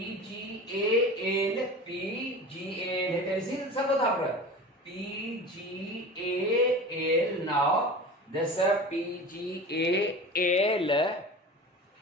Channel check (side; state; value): both; normal; correlation 0.34